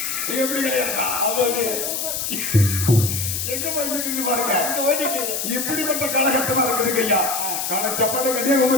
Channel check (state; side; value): noise; left; hiss, 2 dB below the sound